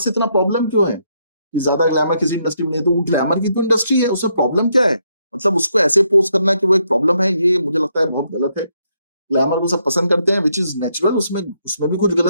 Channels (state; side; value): inverted; both; correlation -0.76